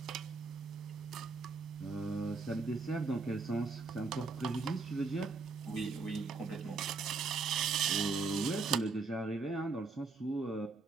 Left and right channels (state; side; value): quieter; left; 4.1 dB